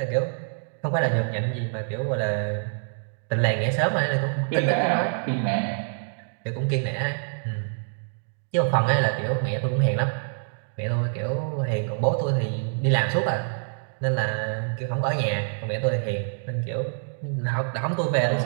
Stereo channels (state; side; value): silent; left; digital silence